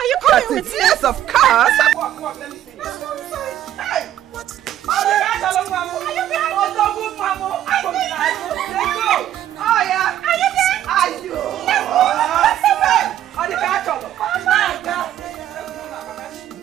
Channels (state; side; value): quieter; left; 11.8 dB